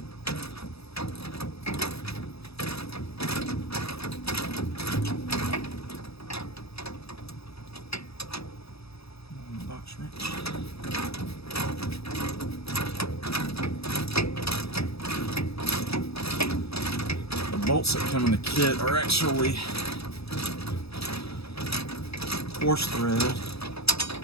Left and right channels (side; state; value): right; late; 0.78 ms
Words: Box wrench. The bolts that come in the kit are actually coarse thread,